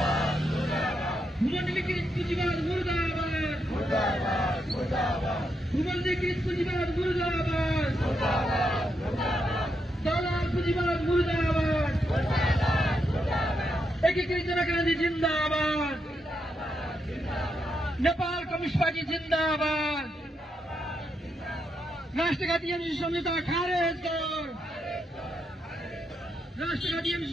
भूमण्डलीकृत पुँजीवाद मुर्दाबाद। भूमण्डलीकृत पुँजीवाद मुर्दाबाद। दलाल पुँजीवाद मुर्दाबाद। एकीकृत जनक्रान्ति जिन्दाबाद। नेपाल कम्युनिस्ट पार्टी जिन्दाबाद। राष्ट्रघाती एमसी सम्झौता खारेज गर। राष्ट्रघाती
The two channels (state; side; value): normal; both; correlation 0.81